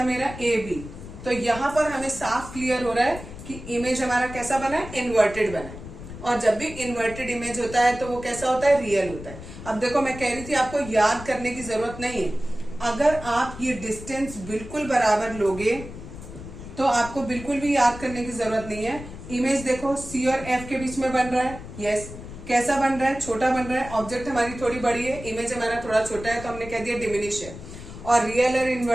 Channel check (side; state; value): left; noise; rumble, 13 dB below the sound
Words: मेरा ए बी। तो यहाँ पर हमें साफ क्लियर हो रहा है कि इमेज हमारा कैसा बना है? इन्वर्टेड बना है। और जब भी इन्वर्टेड इमेज होता है तो वो कैसा होता है? रियल होता है। अब देखो, मैं कह रही थी आपको याद करने की जरूरत नहीं है। अगर आप ये डिस्टेंस बिल्कुल बराबर लोगे तो आपको बिल्कुल भी याद करने की जरूरत नहीं है। इमेज देखो, सी और एफ के बीच में बन रहा है। यस, कैसा बन रहा है? छोटा बन रहा है। ऑब्जेक्ट हमारी थोड़ी बड़ी है, इमेज हमारा थोड़ा छोटा है, तो हमने कह दिया डिमिनिश है। और रियल और